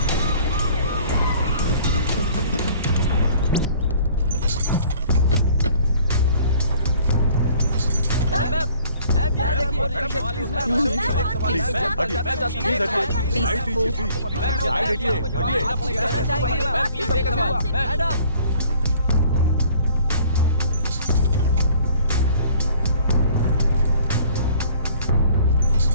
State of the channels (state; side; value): inverted; both; correlation -0.55